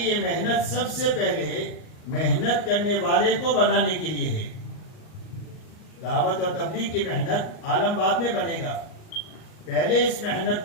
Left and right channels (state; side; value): late; right; 38 ms